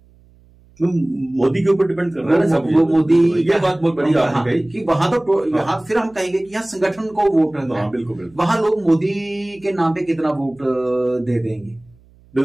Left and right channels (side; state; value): right; noise; hum, 29 dB below the sound